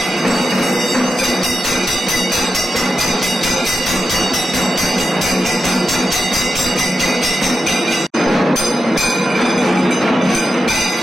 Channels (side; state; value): both; normal; correlation 0.89